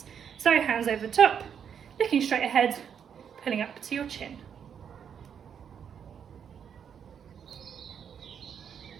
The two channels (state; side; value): quieter; left; 7.8 dB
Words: So hands over the top, looking straight ahead, pulling up to your chin.